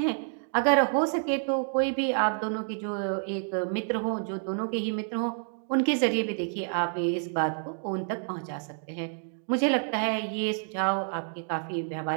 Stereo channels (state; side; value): silent; left; 59 dB below the other